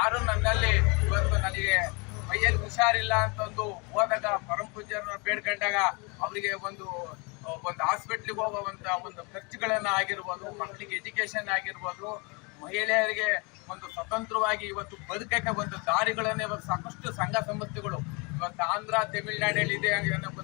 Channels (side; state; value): right; quieter; 30.4 dB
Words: ನನ್ನಲ್ಲಿ ಇವತ್ತು ನನಗೆ ಮೈಯಲ್ಲಿ ಹುಷಾರಿಲ್ಲ ಅಂತಂದು ಹೋದಾಗ ಪರಂ ಪೂಜ್ಯರನ್ನ ಬೇಡ್ಕೊಂಡಾಗ ಅವರಿಗೆ ಒಂದು ಹಾಸ್ಪಿಟ್ಲಿಗೆ ಹೋಗುವಂತ ಒಂದು ಖರ್ಚುಗಳನ್ನ ಆಗಿರ್ಬೋದು, ಮಕ್ಕಳಿಗೆ ಎಜುಕೇಶನ್ ಆಗಿರ್ಬೋದು, ಮಹಿಳೆಯರಿಗೆ ಒಂದು ಸ್ವತಂತ್ರವಾಗಿ ಇವತ್ತು ಬದುಕಕ್ಕೆ ಒಂದು ದಾರಿಗಳನ್ನ ಇವತ್ತು ಸಾಕಷ್ಟು ಸಂಘ ಸಂಸ್ಥೆಗಳು ಇವತ್ತು ಆಂಧ್ರ, ತಮಿಳುನಾಡಲ್ಲಿ ಇದೆ ಅನ್ನೋ